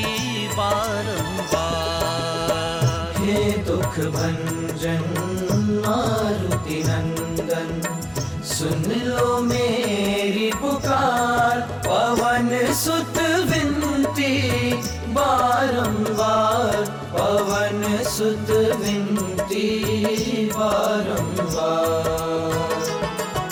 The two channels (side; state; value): both; identical; correlation 1.00